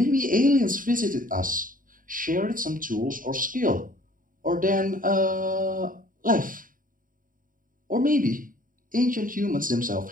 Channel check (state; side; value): late; left; 0.40 ms